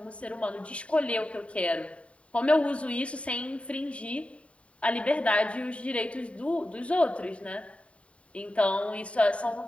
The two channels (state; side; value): late; right; 0.063 ms